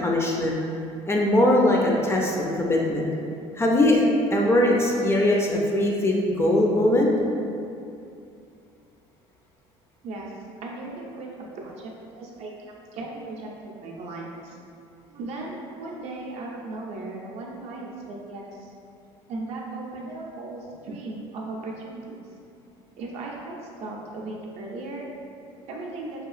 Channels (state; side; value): normal; both; correlation 0.62